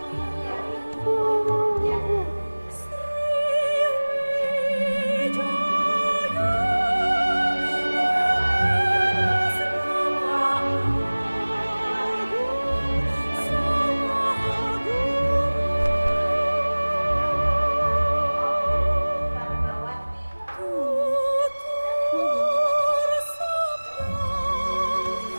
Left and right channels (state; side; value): inverted; both; correlation -1.00